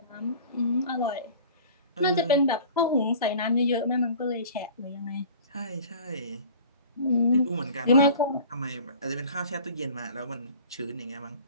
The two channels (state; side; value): inverted; both; correlation -0.44